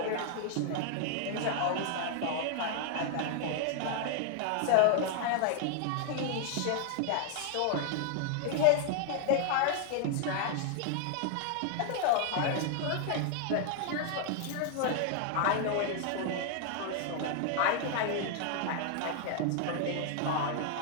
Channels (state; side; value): different; both; correlation 0.00